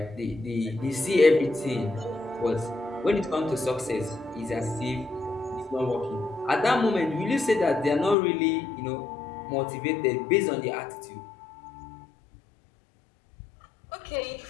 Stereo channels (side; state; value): right; drops out; at 8.2 s